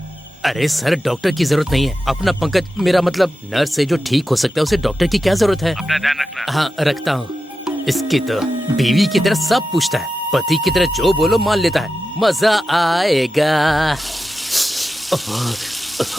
अरे सर डॉक्टर की जरूरत नहीं है। अपना पंकज, मेरा मतलब नर्स से जो ठीक हो सकता है उसे डॉक्टर की क्या जरूरत है। अपना ध्यान रखना। हाँ रखता हूँ। इसकी तो बीवी की तरह सब पूछता है, पति की तरह जो बोलो मान लेता है। मजा आएगा।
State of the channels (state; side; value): normal; both; correlation 0.91